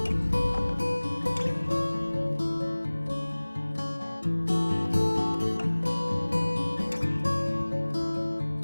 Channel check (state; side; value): inverted; both; correlation -1.00